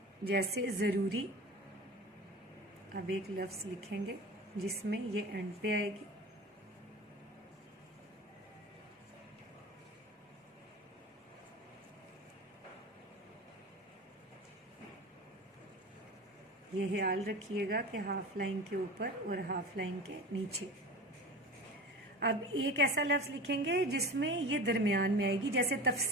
जैसे जरूरी, अब एक लफ्ज लिखेंगे जिसमें ये एंड पे आएगी। ये ख्याल रखिएगा कि हाफ लाइन के ऊपर और हाफ लाइन के नीचे। अब एक ऐसा लफ्ज लिखेंगे जिसमें ये दरमियान में आएगी, जैसे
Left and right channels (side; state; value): both; normal; correlation 0.33